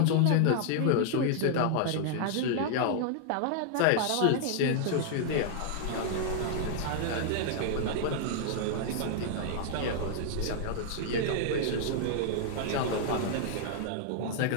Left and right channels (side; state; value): both; different; correlation -0.01